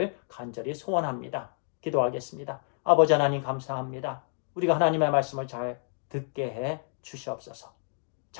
간절히 소원합니다. 기도하겠습니다. 아버지 하나님 감사합니다. 우리가 하나님의 말씀을 잘 듣게 해 주시옵소서.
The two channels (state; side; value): silent; right; 56 dB below the other